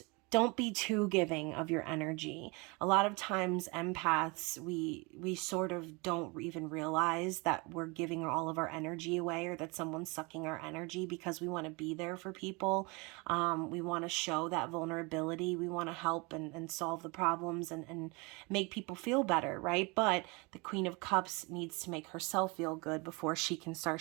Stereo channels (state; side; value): quieter; left; 28.0 dB